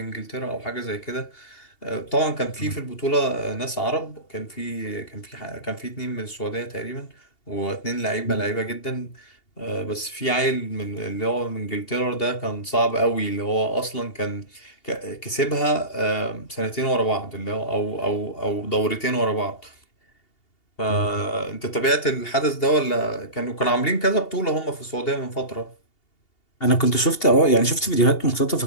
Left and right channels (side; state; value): right; late; 2.8 ms